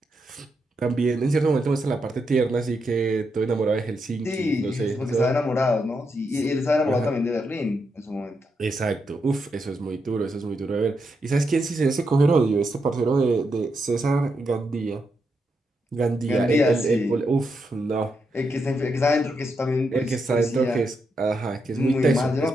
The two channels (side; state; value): both; normal; correlation 0.83